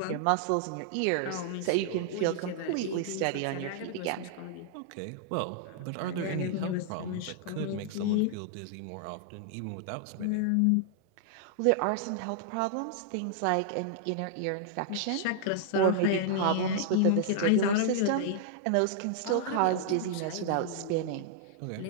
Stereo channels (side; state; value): both; different; correlation -0.01